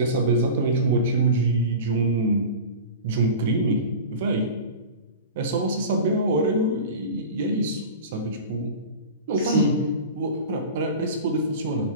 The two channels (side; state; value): both; inverted; correlation -0.32